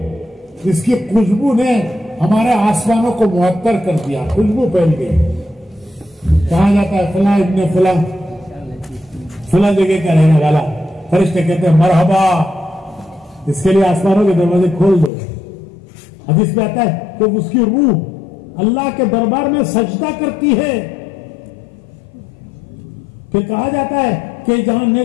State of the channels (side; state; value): right; drops out; at 15.1 s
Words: जिसकी खुशबू ने हमारे आसमानों को मुअत्तर कर दिया, खुशबू फैल गई। कहा जाता है फला इब्ने फला, फला जगह का रहने वाला। फरिश्ते कहते हैं मरहबा, इसके लिए आसमानों के दरवाजे खोल दो। हदीस में आता है कि उसकी रूह अल्लाह के दरबार में सजदा करती है। फिर कहा जाता है कि जहां